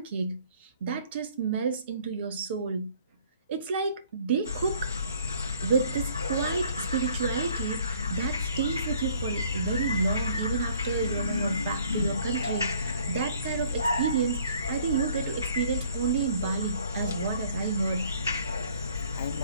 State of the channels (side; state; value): both; inverted; correlation -0.58